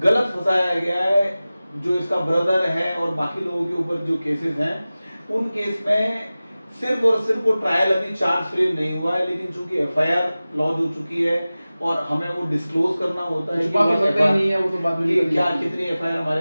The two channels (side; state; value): both; inverted; correlation -0.97